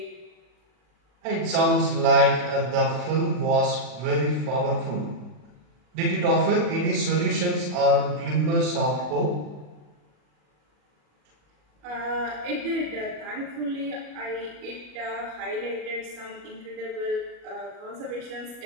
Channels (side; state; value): left; late; 40 ms